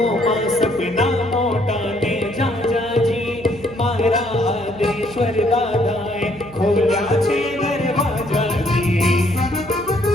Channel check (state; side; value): noise; right; hum, 20 dB below the sound